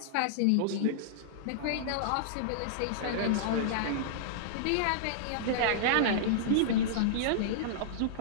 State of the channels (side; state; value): both; different; correlation -0.02